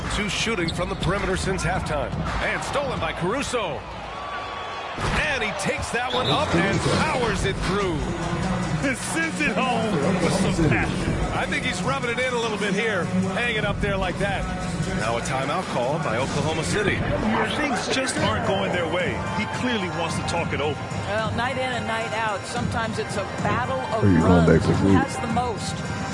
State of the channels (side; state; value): both; identical; correlation 1.00